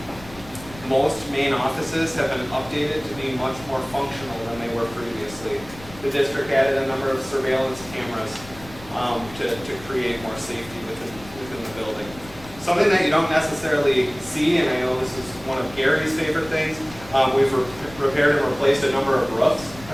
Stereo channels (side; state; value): left; noise; rumble, 18 dB below the sound